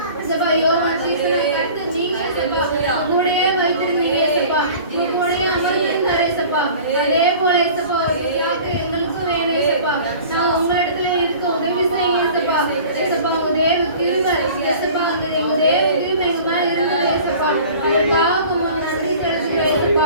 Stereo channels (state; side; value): inverted; both; correlation -0.44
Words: ஏசப்பா யோவான் சீசனை கர்த்தர் நீங்க ஏசப்பா உங்களுடைய வைத்திருந்தீங்க ஏசப்பா. உங்களுடைய அமர்ந்திருந்தார் ஏசப்பா. அதே போல ஏசப்பா ஒரு பிதாக்கு எங்களுக்கும் வேணும் ஏசப்பா. நாங்க உங்களிடத்துல இருக்க உதவி செய்யுங்க ஏசப்பா. ஏசப்பா உங்க தேவ கிருபை ஏசப்பா அந்த எங்க தேவ கிருபை எங்க மேல இருந்தது ஏசப்பா. அதற்காக உங்களுக்கு நன்றி செலுத்துகிறேன்